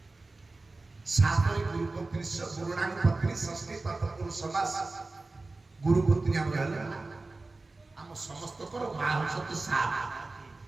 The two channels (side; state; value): left; quieter; 3.4 dB